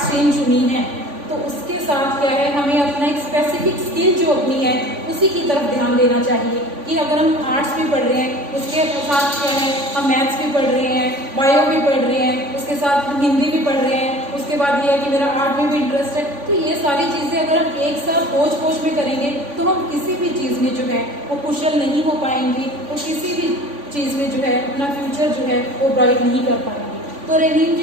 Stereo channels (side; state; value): left; late; 3.5 ms